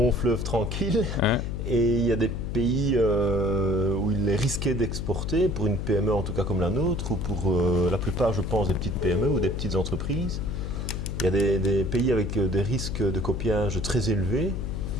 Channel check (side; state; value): left; noise; hum, 3 dB below the sound